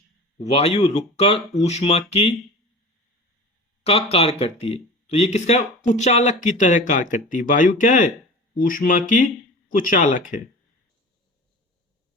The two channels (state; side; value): normal; both; correlation 0.35